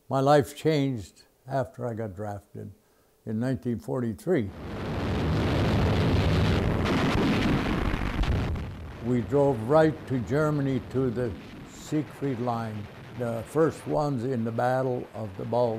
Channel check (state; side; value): identical; both; correlation 1.00